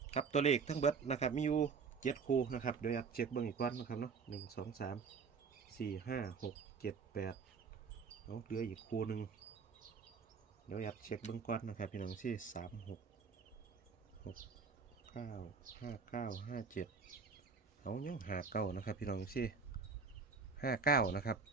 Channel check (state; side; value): quieter; left; 5.2 dB